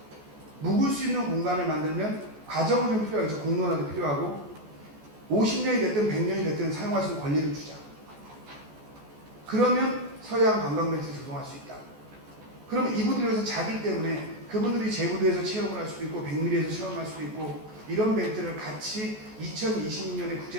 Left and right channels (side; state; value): left; late; 14 ms